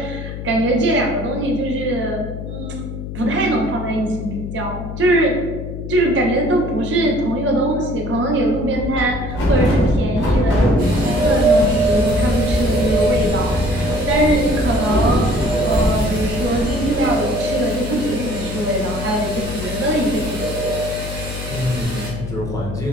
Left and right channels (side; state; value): left; noise; hum, 8 dB below the sound